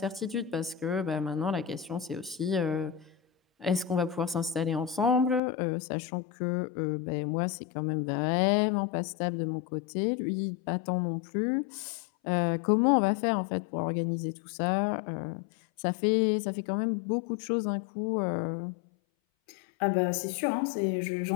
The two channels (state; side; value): drops out; right; at 5.4 s